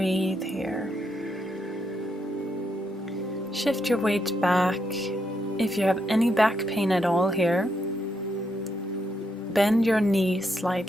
here. Shift your weight back. If you have any back pain at all here, bend your knees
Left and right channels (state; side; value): normal; both; correlation 0.79